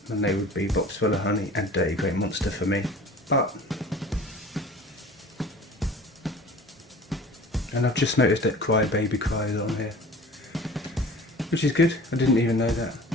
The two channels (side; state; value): both; normal; correlation 0.43